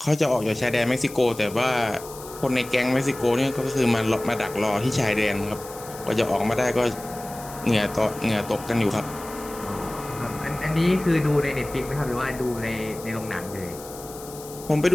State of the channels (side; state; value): left; noise; hiss, 16 dB below the sound